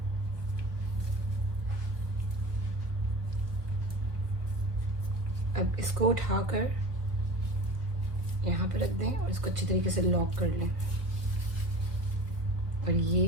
अब इसको उठाकर यहाँ पे रख दें और इसको अच्छी तरीके से लॉक कर लें। और ये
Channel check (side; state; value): left; late; 1.5 ms